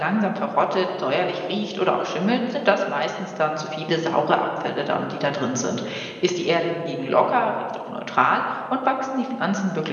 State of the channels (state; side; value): identical; both; correlation 1.00